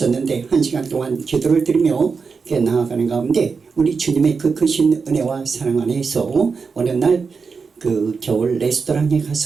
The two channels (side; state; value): left; quieter; 5.1 dB